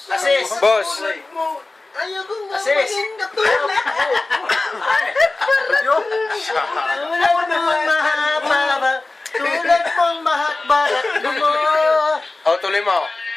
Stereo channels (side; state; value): right; quieter; 3.2 dB